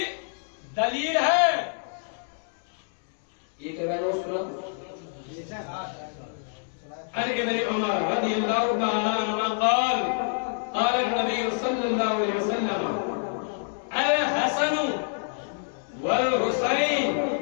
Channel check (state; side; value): silent; right; 60 dB below the other